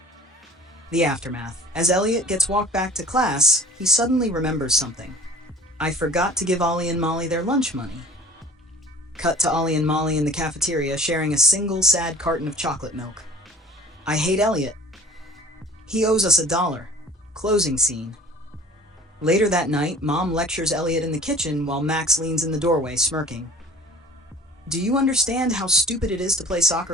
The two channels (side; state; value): both; normal; correlation 0.46